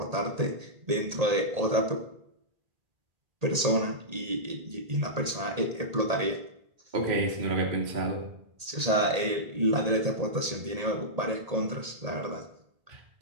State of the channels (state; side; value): late; left; 1.8 ms